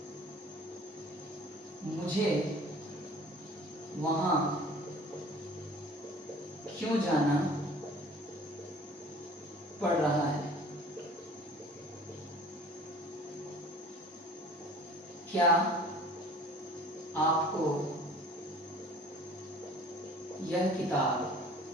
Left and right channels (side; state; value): both; normal; correlation 0.47